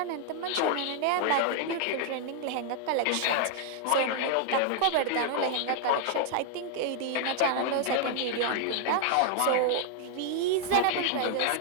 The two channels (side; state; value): both; different; correlation 0.00